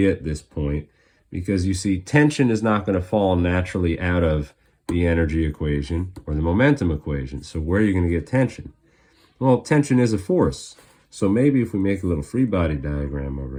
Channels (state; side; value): identical; both; correlation 1.00